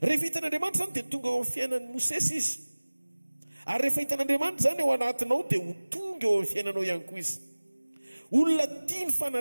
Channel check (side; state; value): both; inverted; correlation -1.00